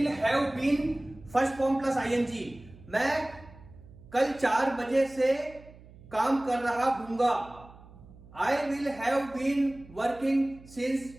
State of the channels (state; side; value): noise; right; hum, 21 dB below the sound